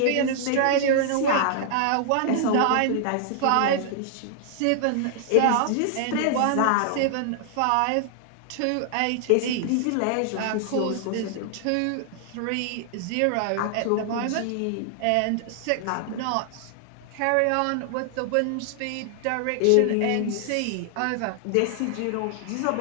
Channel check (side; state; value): both; different; correlation -0.01